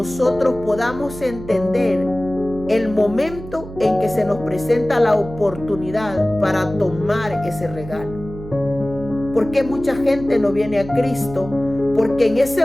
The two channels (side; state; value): right; noise; hum, 13 dB below the sound